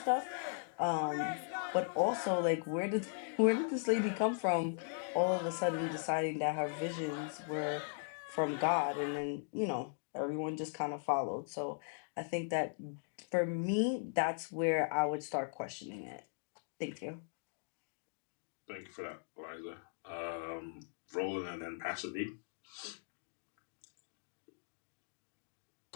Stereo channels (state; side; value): silent; right; digital silence